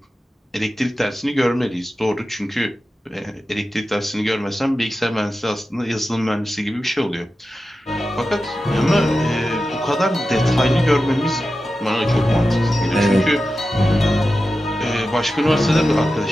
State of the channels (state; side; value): normal; both; correlation 0.92